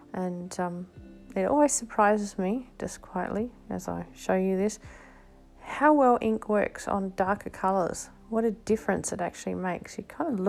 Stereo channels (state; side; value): identical; both; correlation 1.00